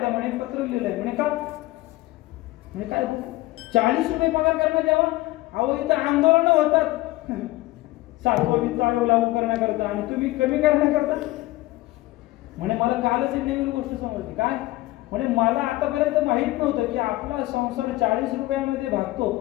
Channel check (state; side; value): quieter; right; 18.5 dB